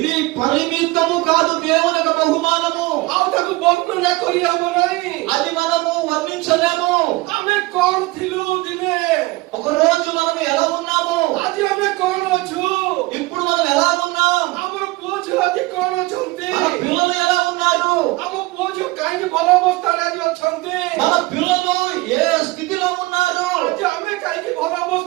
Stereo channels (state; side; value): quieter; left; 21.6 dB